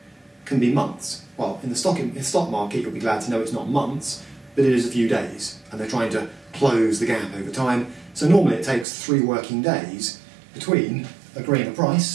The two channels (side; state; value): left; drops out; at 8.8 s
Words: can be months. Well, in the stock market, you'll be glad to know it's not months, but it is a few days, and they're trying to close the gap over time. So normally it takes 3 working days between agreeing a